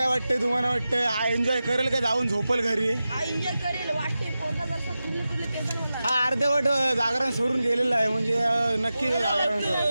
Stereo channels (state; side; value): inverted; both; correlation -0.93